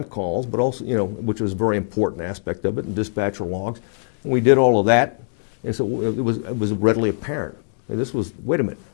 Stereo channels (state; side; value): silent; right; digital silence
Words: calls, but also, which was a very important aspect of it, and dispatcher logs. And we did all of that, and so it was readily apparent. And this was, wait a minute.